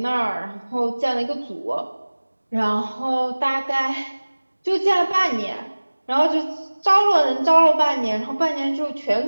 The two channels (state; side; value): inverted; both; correlation -1.00